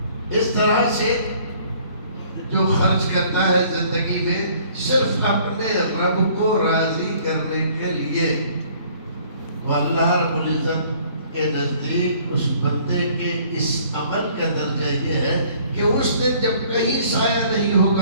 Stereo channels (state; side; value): inverted; both; correlation -0.57